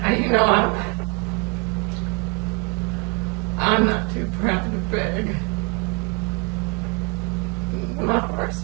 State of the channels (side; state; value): left; quieter; 34.1 dB